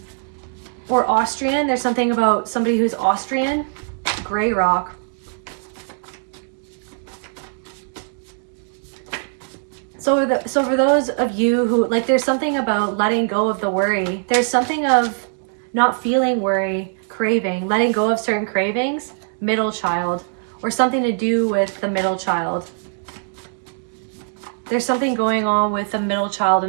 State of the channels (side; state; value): left; silent; digital silence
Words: Or Austrian. There's something about somebody who's Austrian. Gray rock. So for those of you who, like, there's something about letting go of the worry. There's something of not feeling worry, craving, letting go of certain cravings, middle child, or something to do with the middle child. There's something going on with a middle child in